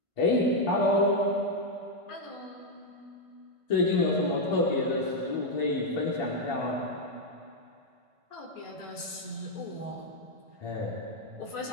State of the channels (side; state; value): left; late; 1.5 ms